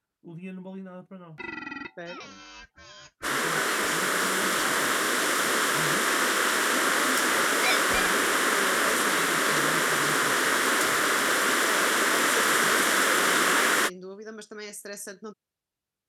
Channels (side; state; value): both; identical; correlation 1.00